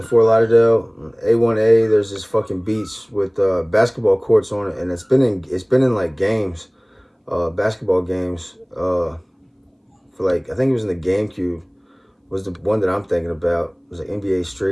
Fort Lauderdale, A1A. There's this fucking beach with basketball courts on it, and it's been in like games, basketball games. For like I think it was in the GameCube. Was the one that I'm thinking about. It was like NBA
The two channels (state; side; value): identical; both; correlation 1.00